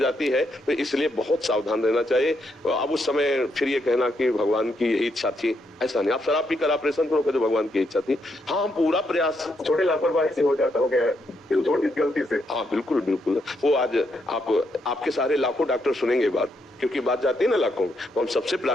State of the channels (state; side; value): normal; both; correlation 0.78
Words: है। तो इसलिए बहुत सावधान रहना चाहिए। अब उस समय फिर ये कहना कि भगवान की यही इच्छा थी, ऐसा नहीं। आप शराब पीकर ऑपरेशन करो तो भगवान की इच्छा थी। हाँ, हम पूरा प्रयास, छोटे लापरवाही से हो जाता, हो गया छोटी गलती से। हाँ बिल्कुल बिल्कुल। वो आज आपके सारे लाखों डॉक्टर सुनेंगे बात, क्योंकि बात जाती है ना लाखों में। तो हम सबसे